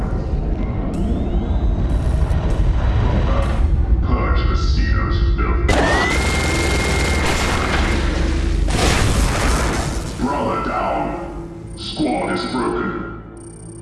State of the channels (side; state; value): both; identical; correlation 1.00